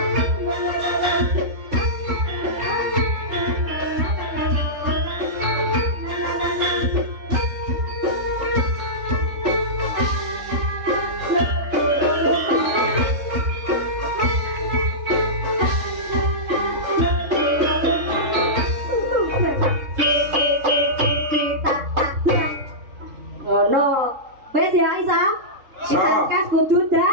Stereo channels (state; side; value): late; left; 3.7 ms